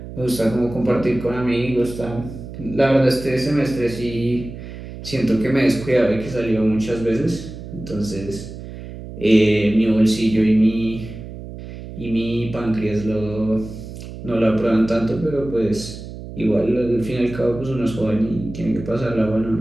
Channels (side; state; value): right; noise; hum, 12 dB below the sound